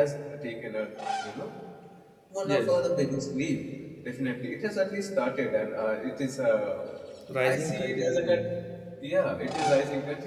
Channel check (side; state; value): both; identical; correlation 1.00